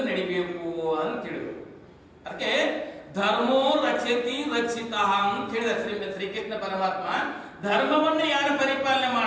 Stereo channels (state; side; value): identical; both; correlation 1.00